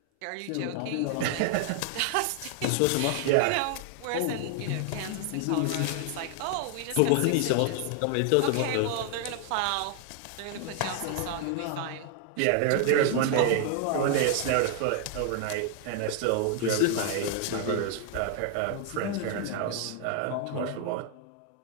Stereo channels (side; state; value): both; different; correlation 0.00